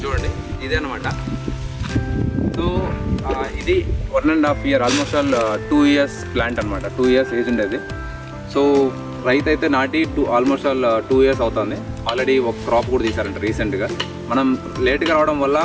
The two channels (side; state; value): both; identical; correlation 1.00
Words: చూడండి, ఇదే అనమాట. సో ఇది 1.5 year, almost all 2 years plant అనమాట. 2 years ఏజ్ ఉండేది. సో రైతు అయితే నాటి ఆల్మోస్ట్ ఆల్ 2 years అవుతుంది. ఆల్రెడీ ఒక క్రాప్ కూడా తీశారంట రీసెంట్గా. మనం లేట్గా రావడం వల్ల